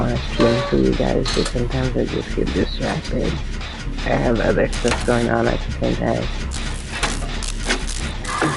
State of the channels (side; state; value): both; identical; correlation 1.00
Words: to stream for you guys, but sometimes I just get distracted. I have other stuff going on at the same time.